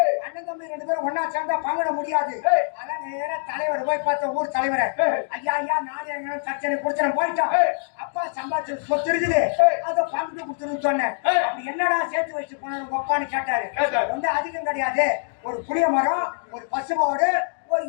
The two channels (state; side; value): silent; right; digital silence